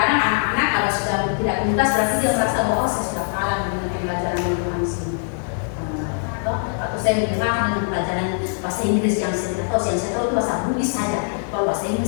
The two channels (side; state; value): right; silent; 60 dB below the other